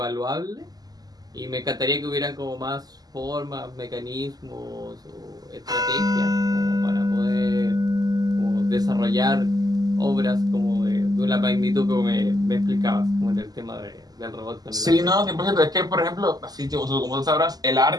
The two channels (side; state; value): left; late; 0.19 ms